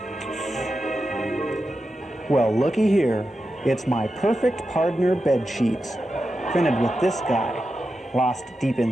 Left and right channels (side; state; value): both; normal; correlation 0.90